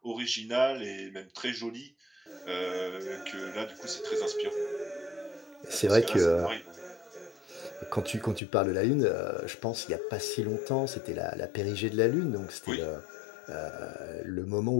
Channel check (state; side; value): drops out; right; at 8.4 s